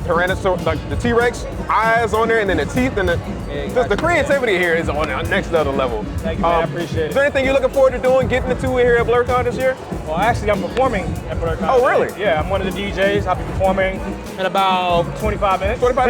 Tyrannosaurus, like the T-Rex eyes on there, and then the teeth, and just the creativity here is on the next level. Thank you, man, I appreciate it. Is there anything you're looking forward to doing, getting into here at Blerdcon this year? Well, actually, I'm performing at Blerdcon. Oh, really? Yeah, I'm one of the DJs. I'll be performing in about 25 minutes. 25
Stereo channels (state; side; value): identical; both; correlation 1.00